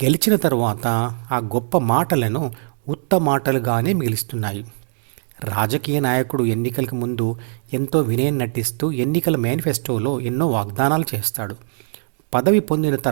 గెలిచిన తర్వాత ఆ గొప్ప మాటలను ఉత్త మాటలుగానే మిగిలిస్తున్నాయి. రాజకీయ నాయకుడు ఎన్నికలకు ముందు ఎంతో వినయం నటిస్తూ ఎన్నికల మేనిఫెస్టోలో ఎన్నో వాగ్దానాలు చేస్తాడు. పదవి పొందిన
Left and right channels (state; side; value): silent; left; digital silence